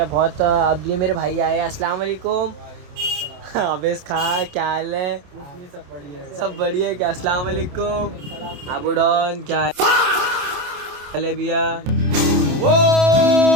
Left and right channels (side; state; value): left; late; 28 ms